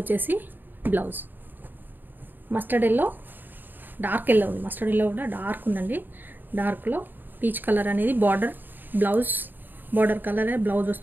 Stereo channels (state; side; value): late; left; 0.091 ms